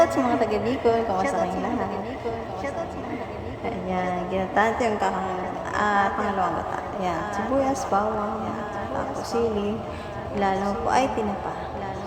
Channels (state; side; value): identical; both; correlation 1.00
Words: sa mga taga Bicol. Kamusta kayong lahat? Ayan, ginataan ito yung pangalawang gata. Ayan, sibuyas, bawang, tapos sili. Lalo po ay tinapa.